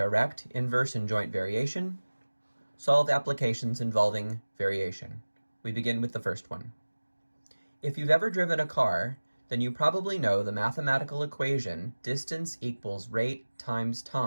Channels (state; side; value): inverted; both; correlation -1.00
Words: inverse, and joint variation. Solve applications involving variation. We begin with the first one. If you've ever driven a car, then you probably know the mathematical equation distance equals rate times